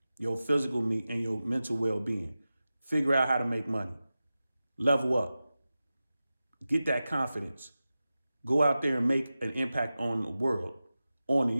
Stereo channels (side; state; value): both; inverted; correlation -0.94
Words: your physical and your mental well-being. Figure out how to make money. Level up. Get that confidence. Go out there and make an impact on the world, on the